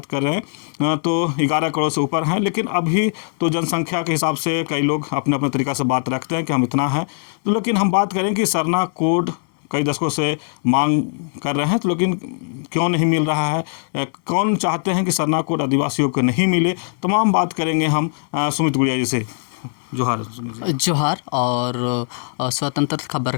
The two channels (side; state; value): right; silent; digital silence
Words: कर रहे हैं तो 11 करोड़ से ऊपर हैं। लेकिन अभी तो जनसंख्या के हिसाब से कई लोग अपने अपने तरीक़ा से बात रखते हैं कि हम इतना हैं। तो लेकिन हम बात करें कि सरना कोड कई दशकों से मांग कर रहे हैं, तो लेकिन क्यों नहीं मिल रहा है, कौन चाहते हैं कि सरना कोड आदिवासियों को नहीं मिले, तमाम बात करेंगे हम सुमित गुड़िया जी से। जोहार। जोहार और स्वतंत्र खबर